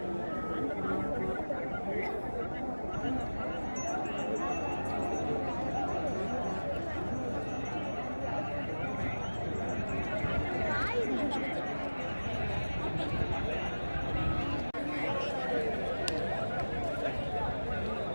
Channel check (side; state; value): both; inverted; correlation -1.00